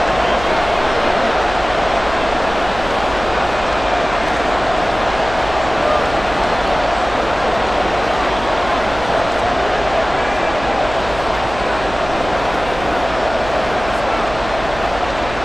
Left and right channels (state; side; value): noise; right; hum, 12 dB below the sound